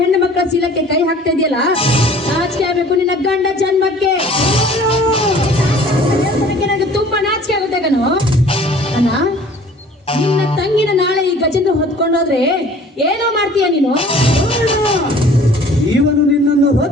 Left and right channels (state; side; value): normal; both; correlation 0.50